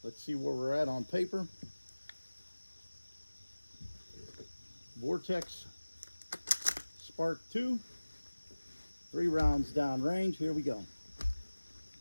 Let's see where we're at on paper. Vortex Sparc 2, 3 rounds down range. Here we go.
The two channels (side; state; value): both; inverted; correlation -1.00